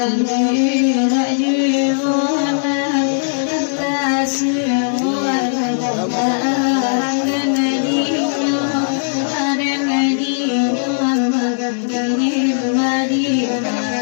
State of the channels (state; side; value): silent; right; digital silence